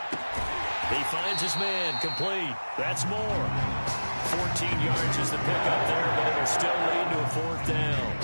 He finds his man, complete. That's more. 14 yards is the pickup there, but it'll still lead to a 4th down.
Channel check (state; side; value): inverted; both; correlation -1.00